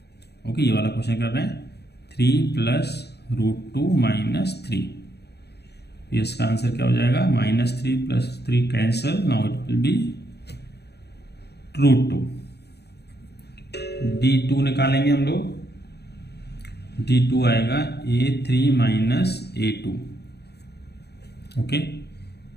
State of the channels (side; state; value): right; late; 0.48 ms